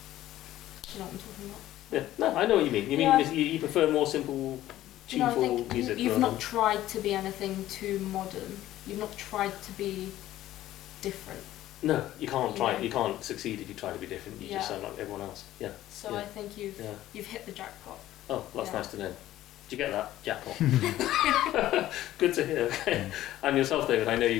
know what I'm talking about. Yeah. No, I know what you mean. You mean you prefer more simple, tuneful music. You've not tried to be anything too modern. You've not tried to be different. No, you can't try. You can't succeed if you try to be different. You just sound like everyone else. Yeah. So I think you've hit the jackpot. Oh, that's nice to know. Did you get that? Jackpot. Good to hear. Okay. And yourself, David, I know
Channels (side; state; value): right; quieter; 14.1 dB